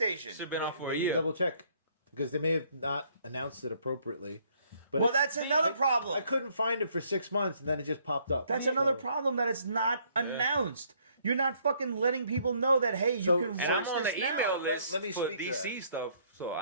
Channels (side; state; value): both; inverted; correlation -0.65